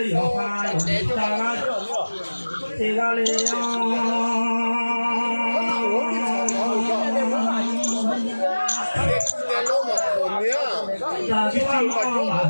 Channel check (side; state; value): both; inverted; correlation -1.00